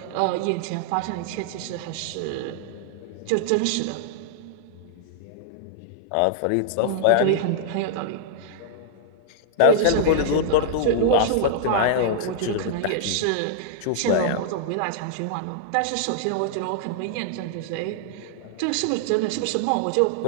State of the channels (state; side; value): different; both; correlation -0.01